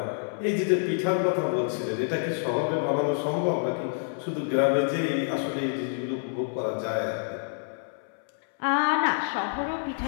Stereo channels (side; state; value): right; silent; 60 dB below the other